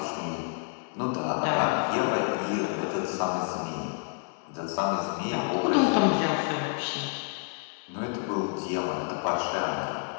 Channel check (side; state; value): right; quieter; 40.0 dB